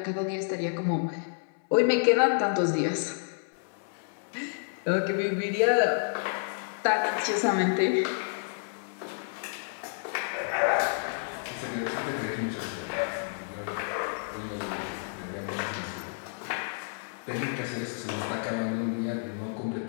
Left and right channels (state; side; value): silent; right; 58 dB below the other